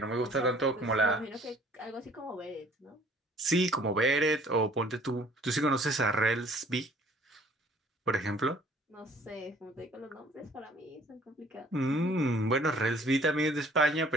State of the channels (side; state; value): both; normal; correlation 0.56